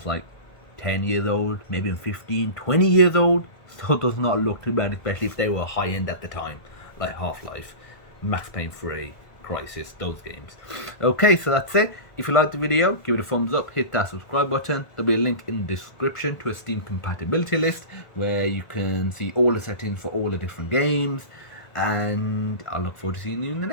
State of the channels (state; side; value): late; right; 1.5 ms